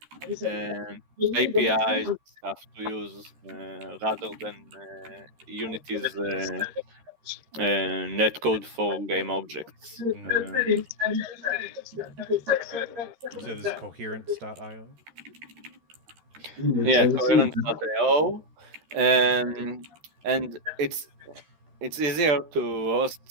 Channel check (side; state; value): left; late; 13 ms